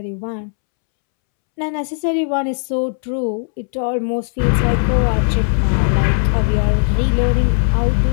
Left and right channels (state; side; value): silent; right; 68 dB below the other